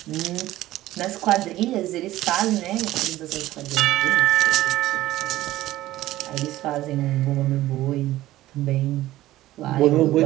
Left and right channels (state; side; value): quieter; left; 15.6 dB